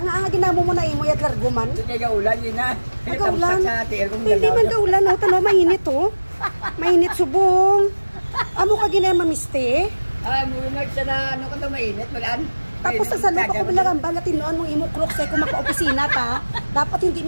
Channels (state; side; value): inverted; both; correlation -1.00